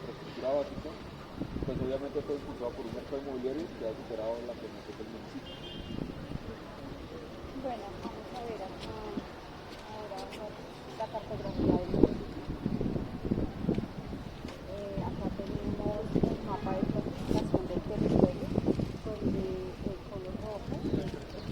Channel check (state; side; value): identical; both; correlation 1.00